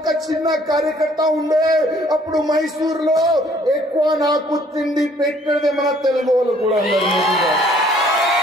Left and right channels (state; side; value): normal; both; correlation 0.60